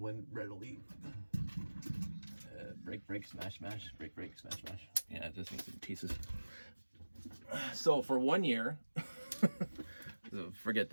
readily. Break, smash, break, smash. Yeah, it just needs some pieces. So for 1 year, forget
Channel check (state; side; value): inverted; both; correlation -1.00